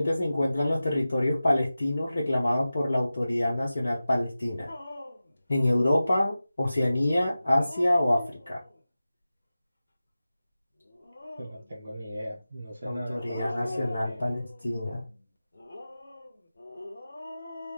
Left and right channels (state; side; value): inverted; both; correlation -0.95